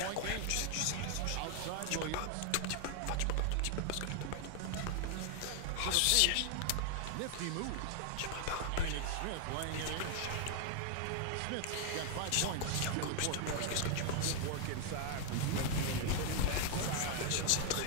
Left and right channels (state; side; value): different; both; correlation 0.00